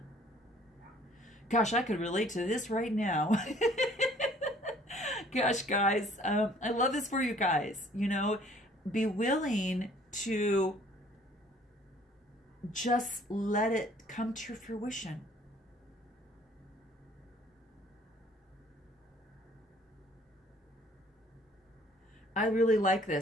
Gosh, I could relate to this right now. Gosh, guys, I love this for you guys. You know, be willing to just let it come to fruition. I really like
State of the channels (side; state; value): both; normal; correlation 0.57